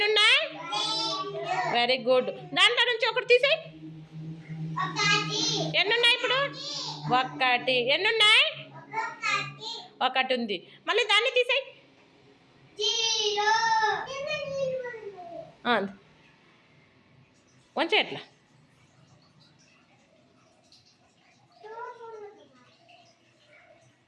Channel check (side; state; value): both; identical; correlation 1.00